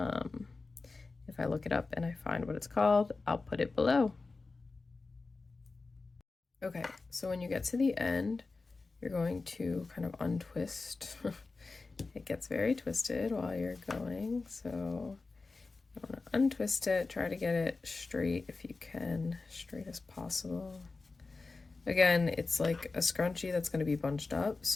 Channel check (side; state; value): right; quieter; 3.8 dB